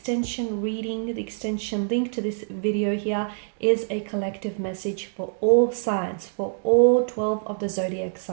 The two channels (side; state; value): left; silent; digital silence